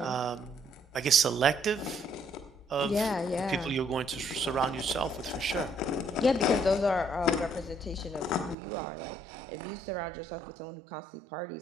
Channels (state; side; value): drops out; left; at 8.6 s